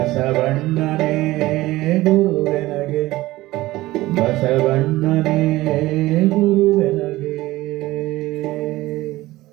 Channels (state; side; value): quieter; left; 17.9 dB